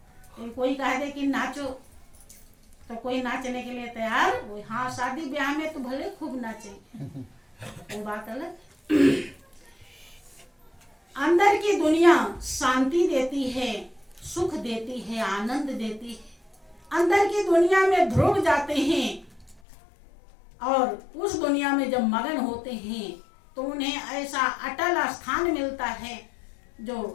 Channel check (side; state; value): right; drops out; at 19.6 s